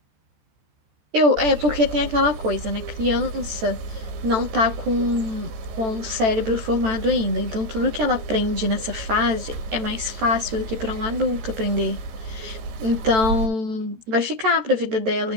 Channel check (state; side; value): late; left; 14 ms